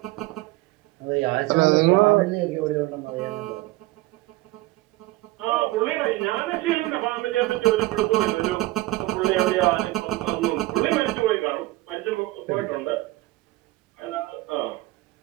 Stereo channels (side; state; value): left; quieter; 18.9 dB